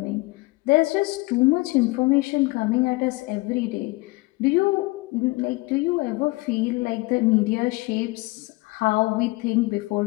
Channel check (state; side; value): quieter; right; 23.8 dB